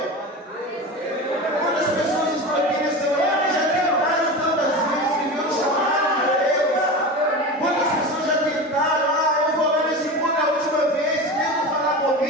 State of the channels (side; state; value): both; normal; correlation 0.27